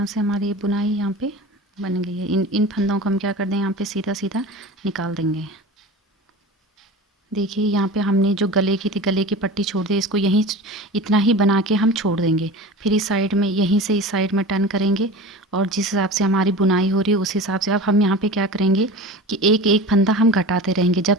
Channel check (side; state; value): both; normal; correlation 0.34